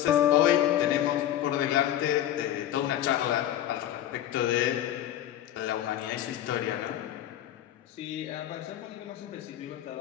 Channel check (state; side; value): quieter; right; 12.0 dB